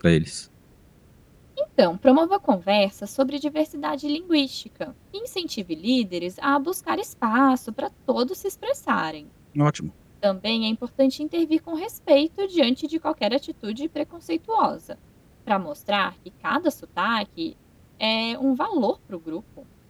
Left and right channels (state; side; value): identical; both; correlation 1.00